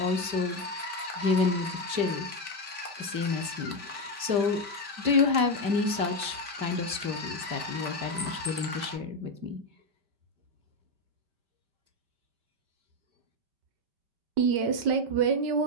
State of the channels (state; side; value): late; left; 5.0 ms